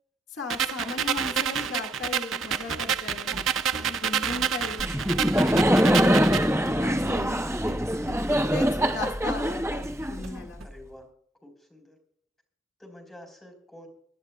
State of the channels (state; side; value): normal; both; correlation 0.75